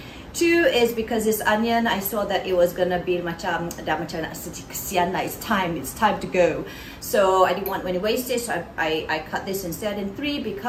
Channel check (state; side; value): identical; both; correlation 1.00